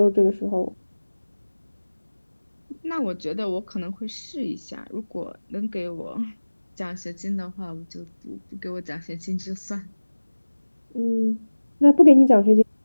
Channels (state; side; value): inverted; both; correlation -1.00